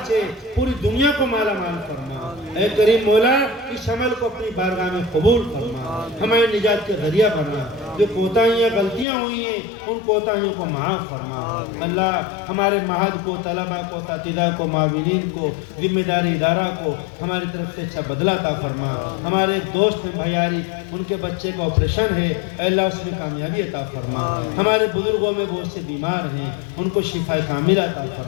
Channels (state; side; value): drops out; right; at 9.1 s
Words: سے پوری دنیا کو مالا مال فرما. اے کریم مولا, اس عمل کو اپنی بارگاہ میں قبول فرما, ہمارے نجات کے ذریعہ بنا. جو کوتاہیاں غلطیاں ہوئی ہیں ان کوتاہیوں کو معاف فرما. اللہ ہمارے معہد کو, طلبہ کو, اساتذہ کو, معاونین کو, ذمہ داری ادارہ کو ہماری طرف سے اچھا بدلہ عطا فرما. ہمارے دوست بھیاری, ان کے بچے کا آپریشن ہے, اے اللہ اس میں کامیابی عطا فرما. ہمارے بزرگوں میں بہت سے بیمار ہیں, ان کو شفا کاملہ عطا